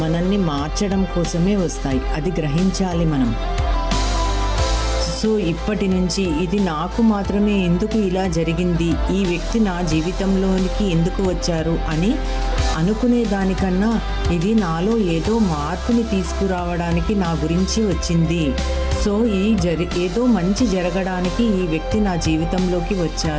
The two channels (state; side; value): identical; both; correlation 1.00